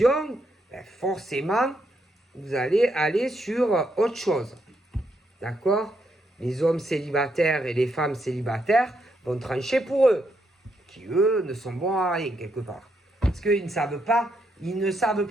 ben forcément, vous allez aller sur autre chose. D'accord? Les hommes célibataires et les femmes célibataires vont trancher pour eux, qui eux ne sont bons à rien quelque part. Parce qu'ils ne savent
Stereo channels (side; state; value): both; normal; correlation 0.78